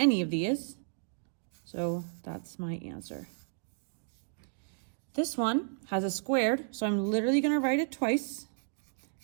of these, so that's my answer. This one has a squared, so I'm literally going to write it twice,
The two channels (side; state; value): left; silent; digital silence